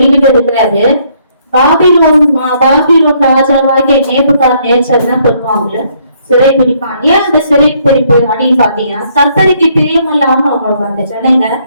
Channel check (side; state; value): both; inverted; correlation -0.68